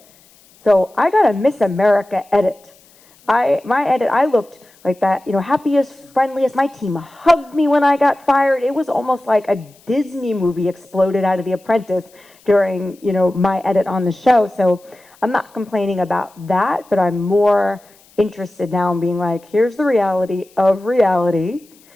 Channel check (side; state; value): left; noise; hiss, 29 dB below the sound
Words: So I got a Miss America edit. My edit, I looked like that, happiest, friendliest. My team hugged me when I got fired. It was almost like a Disney movie exploded out of The Apprentice during, my edit on the show. So I'm not complaining about that, but I'm more interested now in being like, here's the reality of reality,